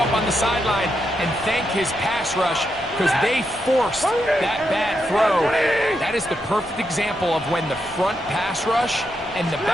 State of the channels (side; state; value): left; noise; rumble, 23 dB below the sound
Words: on the sideline and thank his pass rush because they forced that bad throw. That is the perfect example of when the front pass rush and the